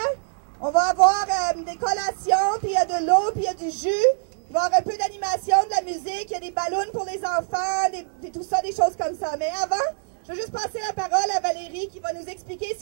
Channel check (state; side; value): silent; left; digital silence